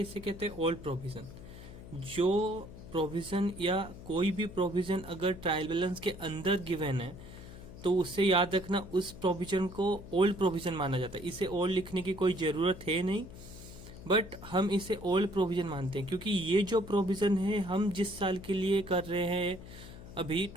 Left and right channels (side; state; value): left; noise; hum, 15 dB below the sound